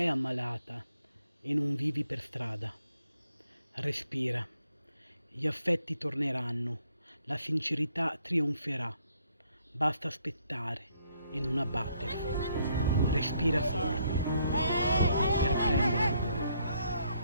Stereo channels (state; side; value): inverted; both; correlation -0.71